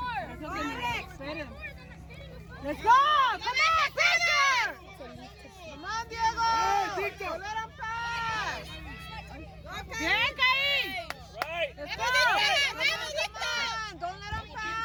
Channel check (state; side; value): identical; both; correlation 1.00